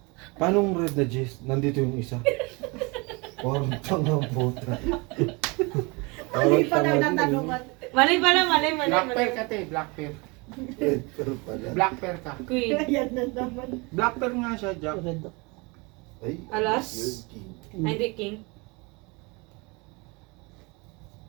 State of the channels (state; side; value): quieter; left; 27.6 dB